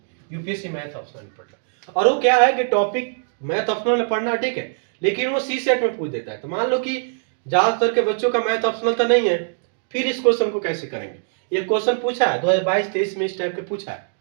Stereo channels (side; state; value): left; silent; digital silence